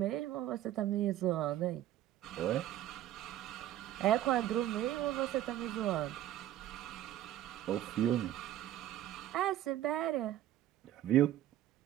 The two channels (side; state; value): left; quieter; 12.9 dB